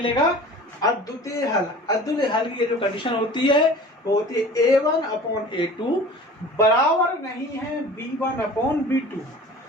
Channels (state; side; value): normal; both; correlation 0.42